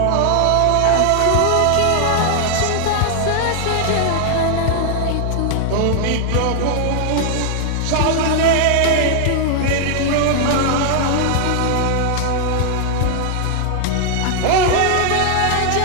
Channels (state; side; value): different; both; correlation 0.00